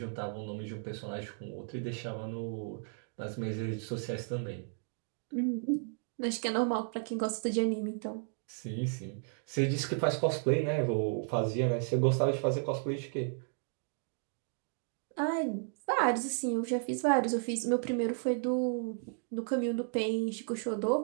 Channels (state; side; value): silent; left; 55 dB below the other